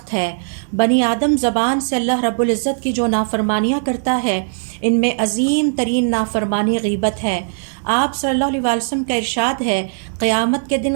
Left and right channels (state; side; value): silent; left; digital silence